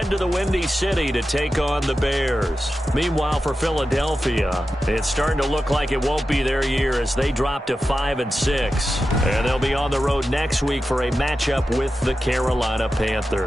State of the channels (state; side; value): normal; both; correlation 0.92